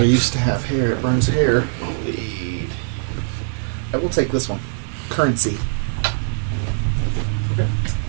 to have hair. It burns hair. Lead. I will take this one. Currency. Okay.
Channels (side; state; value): left; silent; digital silence